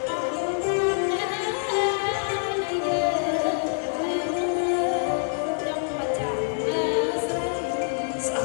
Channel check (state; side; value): silent; right; digital silence